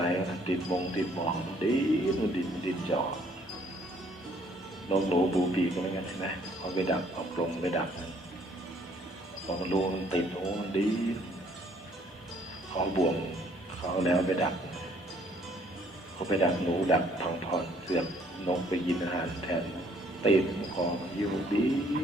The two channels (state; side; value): normal; both; correlation 0.63